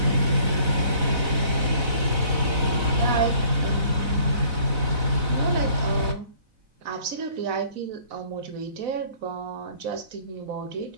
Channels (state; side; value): late; left; 4.0 ms